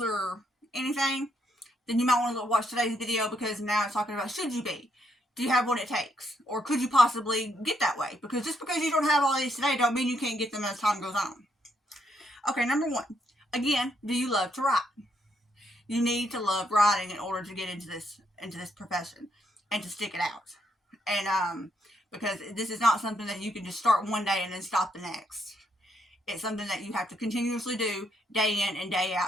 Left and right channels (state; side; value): normal; both; correlation 0.75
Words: or anything, then you might want to watch today's video because now it's talking about should you be? Do you have what it takes? Or could you possibly get that way? Because just because you don't have all these today don't mean you can't get them as time goes on. Okay, number one. Again, do you love to write? You need to love writing in order to get into this profession and to stick it out. And because this is not something that you can just start one day and then stop the next. It's something that you have to continuously do day in and day